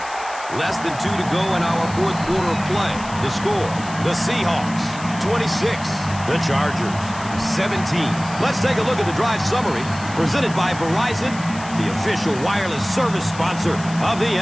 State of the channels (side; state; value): left; noise; hiss, 16 dB below the sound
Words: Less than 2 to go in our fourth quarter of play. The score, the Seahawks, 26. The Chargers, 17. Let's take a look at the drive summary presented by Verizon, the official wireless service sponsor of the